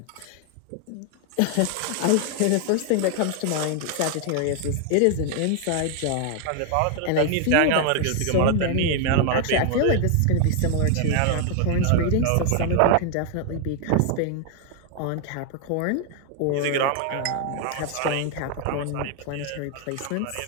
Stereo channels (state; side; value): different; both; correlation 0.00